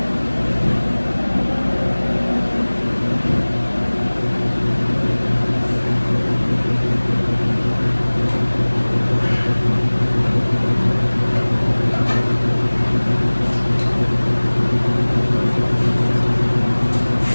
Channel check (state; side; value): inverted; both; correlation -1.00